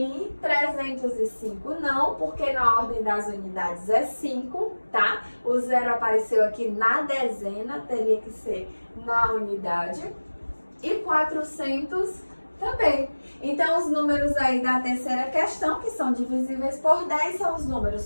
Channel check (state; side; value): inverted; both; correlation -1.00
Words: 305, não, porque na ordem das unidades é 5, tá? O zero apareceu aqui na dezena, teria que ser na unidade. E 400 também. Então, os números aí da terceira questão, que são divisíveis por 10, são os